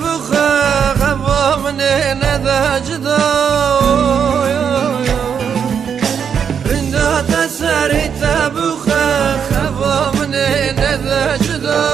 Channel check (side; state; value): left; quieter; 7.4 dB